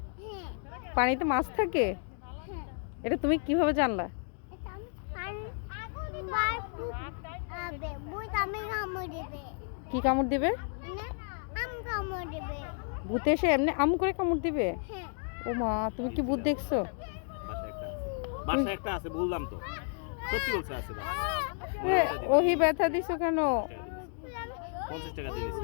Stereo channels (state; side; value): silent; right; 56 dB below the other